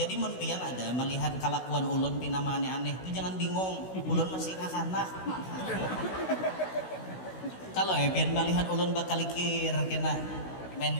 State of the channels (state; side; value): late; right; 16 ms